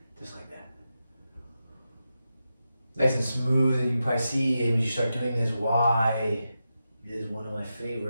just like that. Nice and smooth, and you can probably see when you start doing this why it is one of my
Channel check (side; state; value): both; inverted; correlation -0.89